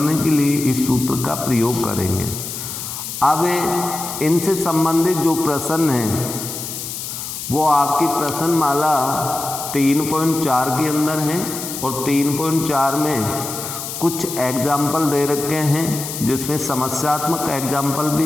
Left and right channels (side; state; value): left; noise; hiss, 7 dB below the sound